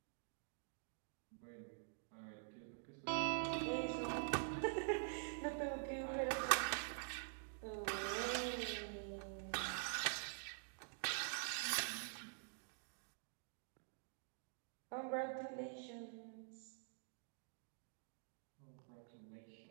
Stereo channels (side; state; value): left; silent; digital silence